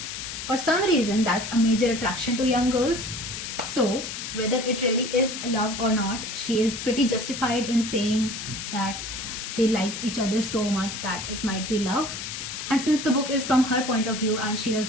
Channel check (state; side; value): noise; left; hiss, 7 dB below the sound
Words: For some reason, that's a major attraction to young girls. So, whether it really is love or not, she is pretty justified in saying that they like each other so much that it might be love. And since the book is from her point of view and she